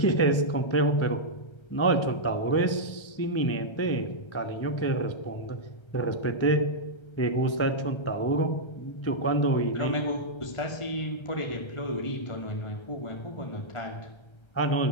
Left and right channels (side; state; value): right; late; 1.3 ms